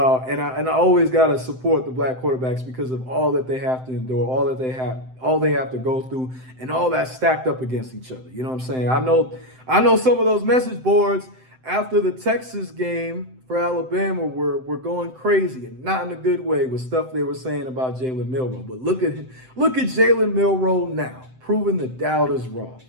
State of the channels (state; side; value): late; left; 7.8 ms